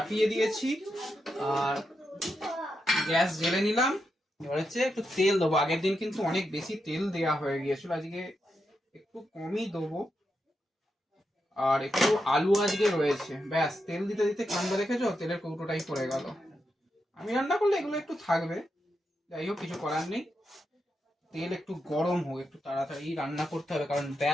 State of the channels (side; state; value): both; normal; correlation 0.85